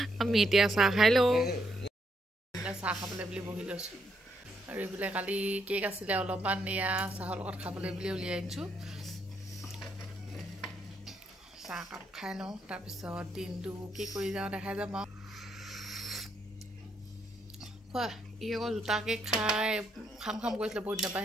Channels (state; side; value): normal; both; correlation 0.76